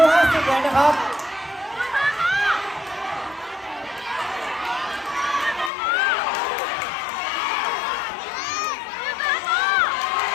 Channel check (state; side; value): drops out; right; at 5.7 s